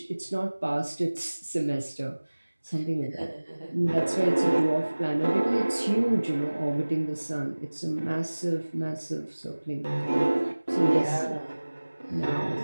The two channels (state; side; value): inverted; both; correlation -1.00